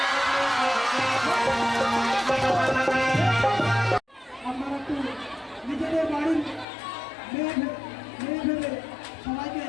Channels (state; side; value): drops out; right; at 6.7 s